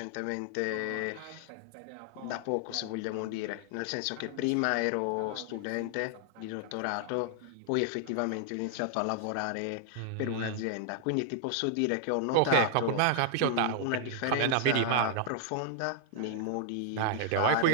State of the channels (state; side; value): different; both; correlation 0.00